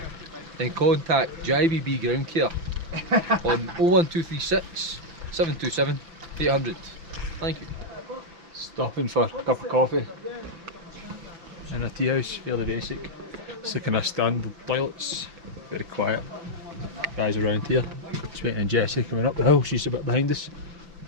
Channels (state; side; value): late; left; 5.9 ms